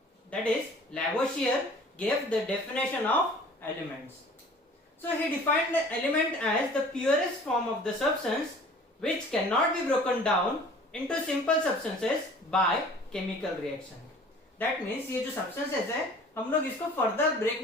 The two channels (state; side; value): normal; both; correlation 0.48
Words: that is Lavoisier, gave the definition of elements. So he defined the element as the purest form of the substance which cannot be broken down into simple substances by chemical reaction. That means ये जो substances है हम लोग इसको further